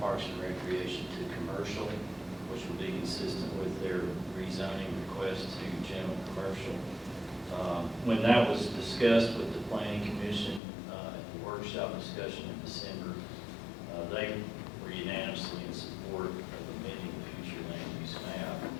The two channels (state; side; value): drops out; right; at 10.6 s